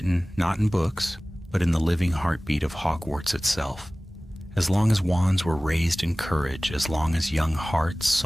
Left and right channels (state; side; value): normal; both; correlation 0.98